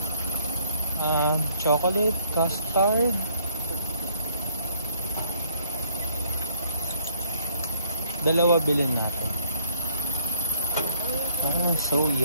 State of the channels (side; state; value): both; inverted; correlation -0.64